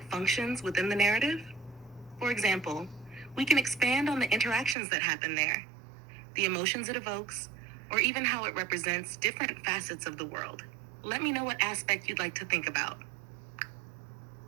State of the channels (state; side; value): drops out; left; at 4.8 s